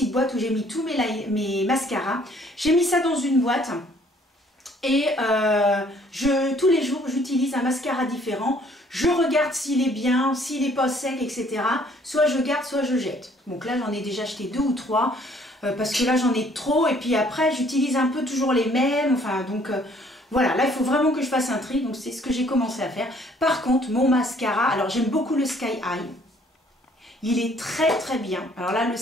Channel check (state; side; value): normal; both; correlation 0.61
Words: boîtes où j'ai mis tous mes mascaras. J'ai mis ça dans une boîte. Et tous les jours, j'utilise un mascara différent. Je regarde s'il est bien, s'il n'est pas sec, etc. Soit je garde, soit je jette. Donc là, j'en ai déjà acheté 2 ou 3. Parce que là, j'en ai trop. Et puis après, j'utilise un peu toujours les mêmes. Enfin, donc voilà. Là, il faut vraiment que je fasse un tri. Donc c'est ce que j'ai commencé à faire. Par contre, mon mascara, alors j'aime beaucoup le Sky High. Il est très très bien. Alors là, le